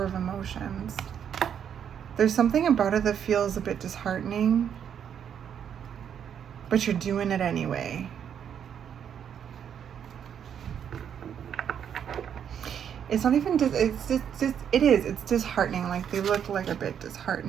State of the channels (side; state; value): left; quieter; 8.5 dB